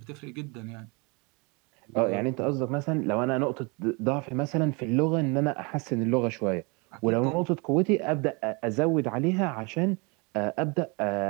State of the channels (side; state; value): left; quieter; 30.0 dB